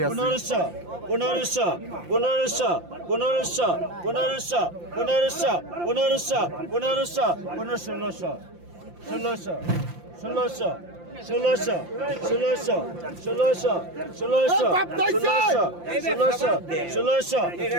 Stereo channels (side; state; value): left; late; 5.8 ms